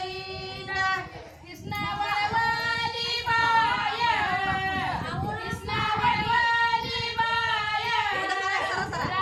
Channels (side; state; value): both; identical; correlation 1.00